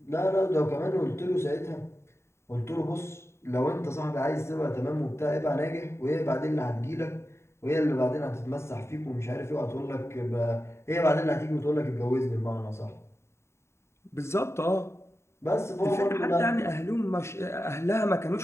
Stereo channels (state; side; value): late; right; 0.13 ms